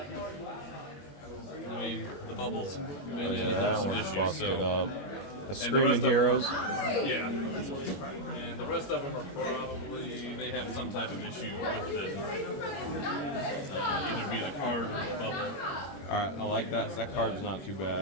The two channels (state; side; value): late; right; 21 ms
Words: I mean, the bubbles been in. Yeah, There's some one's issues. busted So. up. The Screaming Heroes. Yeah. And the rest of them are probably they have some type of issue with them. Either be the card or the bubble. All right, I like that. That card's not too